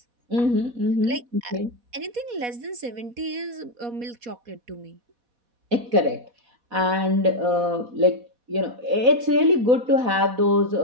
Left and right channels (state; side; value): late; left; 4.1 ms